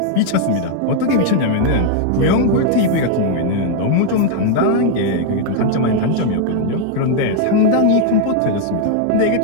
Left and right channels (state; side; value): different; both; correlation 0.00